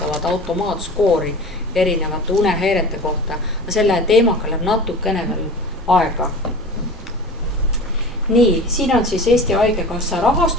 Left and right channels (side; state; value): both; normal; correlation 0.36